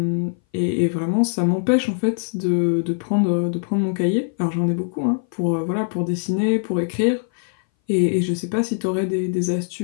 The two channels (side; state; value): right; silent; 59 dB below the other